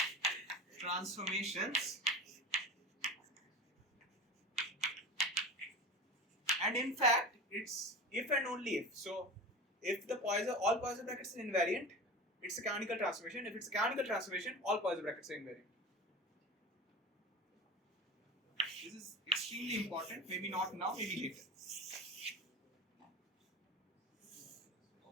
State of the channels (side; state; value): both; normal; correlation 0.32